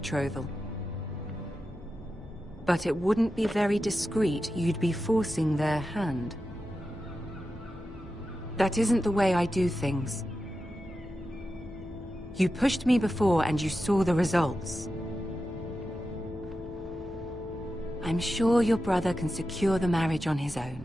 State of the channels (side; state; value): both; normal; correlation 0.91